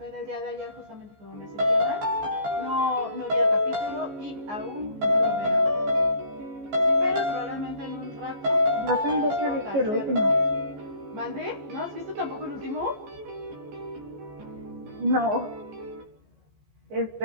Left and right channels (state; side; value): late; left; 14 ms